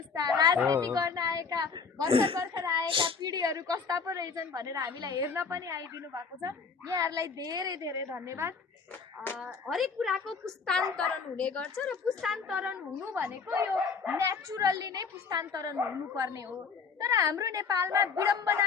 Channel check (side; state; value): right; quieter; 5.3 dB